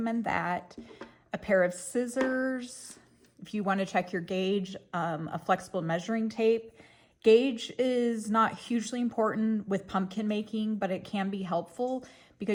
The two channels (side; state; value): both; identical; correlation 1.00